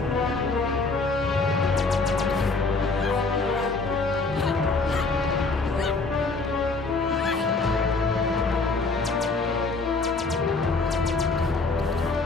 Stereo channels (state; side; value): quieter; right; 3.8 dB